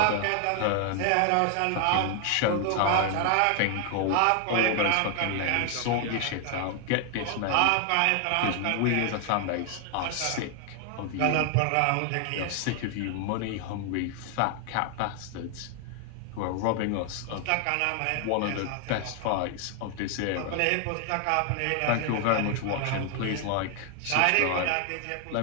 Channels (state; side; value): different; both; correlation 0.00